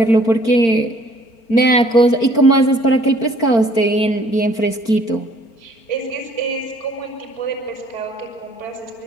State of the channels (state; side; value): late; right; 4.4 ms